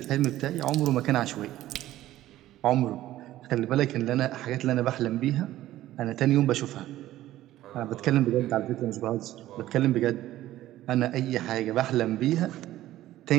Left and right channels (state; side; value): quieter; left; 14.5 dB